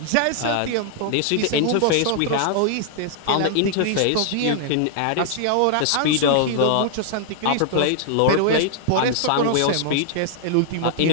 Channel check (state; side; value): different; both; correlation -0.01